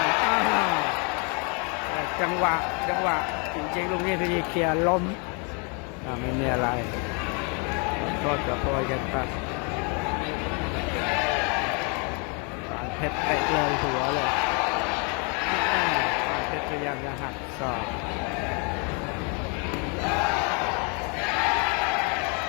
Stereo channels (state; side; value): quieter; right; 35.1 dB